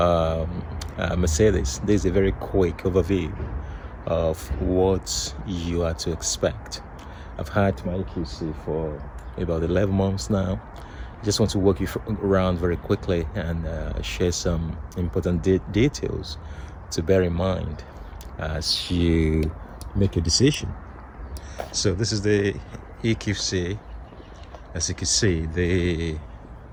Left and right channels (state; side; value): identical; both; correlation 1.00